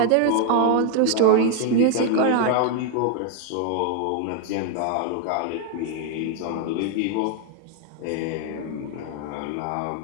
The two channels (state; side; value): different; both; correlation 0.00